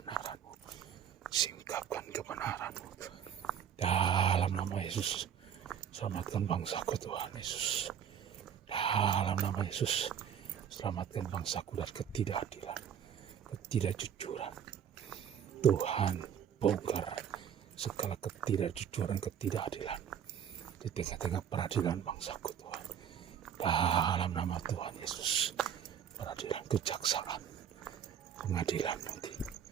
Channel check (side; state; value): left; quieter; 8.7 dB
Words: Singkapkan kebenaran-Mu. Dalam nama Yesus. Selamatkan bangsaku Tuhan Yesus. Dalam nama Yesus. Selamatkan bangsaku dari ketidakadilan. Ketidakjujuran. Tuhan, bongkar segala ketidakjujuran, ketidakadilan. Di tengah-tengah peradilan bangsaku Tuhan. Dalam nama Tuhan Yesus, peradilan kejaksaan, pengadilan nanti,